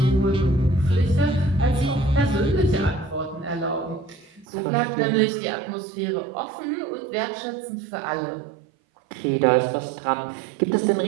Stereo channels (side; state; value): left; drops out; at 4.5 s